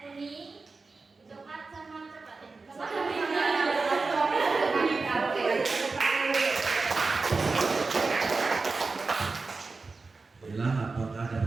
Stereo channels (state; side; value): quieter; left; 4.0 dB